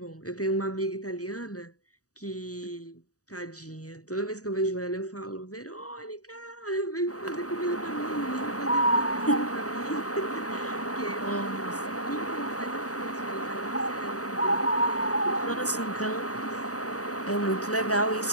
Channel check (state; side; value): late; right; 0.66 ms